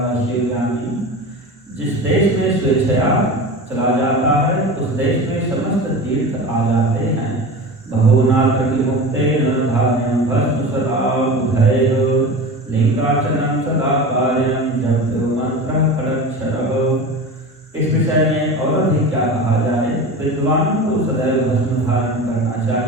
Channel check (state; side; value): normal; both; correlation 0.31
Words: शिवज्ञानी जिस देश में स्वेच्छया चला जाता है, उस देश में समस्त तीर्थ आ जाते हैं। बहुनात्र मुक्तेन धान्यं भस्म सदा बुधैः लिंगार्चनं सदा कार्यं जप्यो मंत्रः खडक्षरः। इस विषय में और अधिक क्या कहा जाए। विद्वानों को सदैव भस्म धारण करना